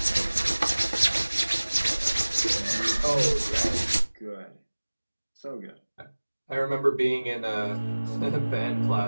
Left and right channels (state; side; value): inverted; both; correlation -1.00